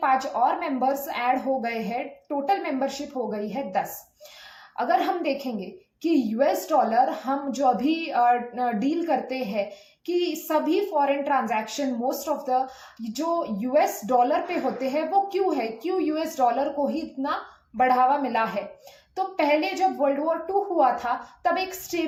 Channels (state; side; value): identical; both; correlation 1.00